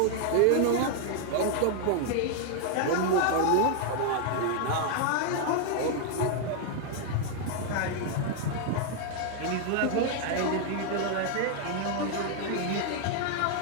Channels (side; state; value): both; different; correlation 0.00